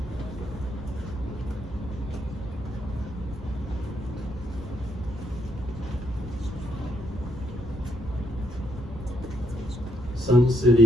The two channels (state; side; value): normal; both; correlation 0.75